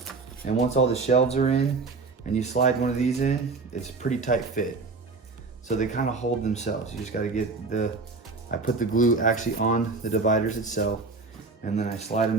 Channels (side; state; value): left; quieter; 4.0 dB